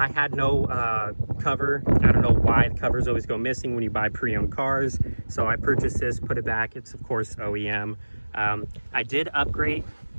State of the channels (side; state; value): both; inverted; correlation -1.00